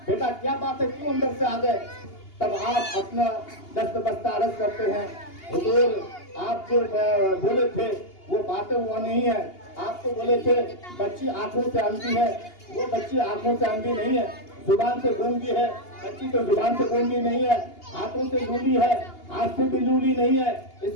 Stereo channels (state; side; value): late; right; 2.8 ms